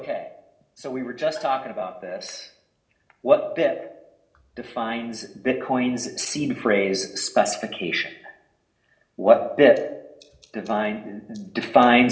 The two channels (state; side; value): identical; both; correlation 1.00